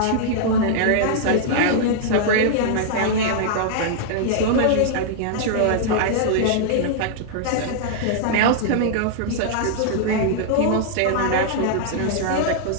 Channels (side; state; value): both; different; correlation -0.01